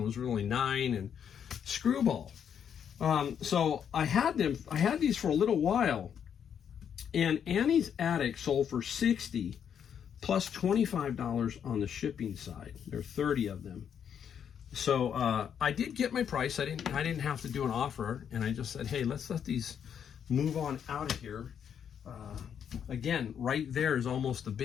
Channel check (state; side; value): quieter; right; 8.2 dB